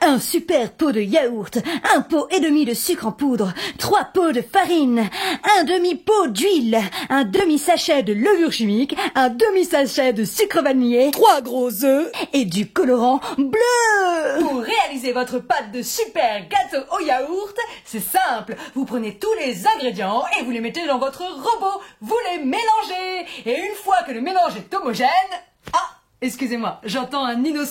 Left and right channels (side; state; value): both; identical; correlation 1.00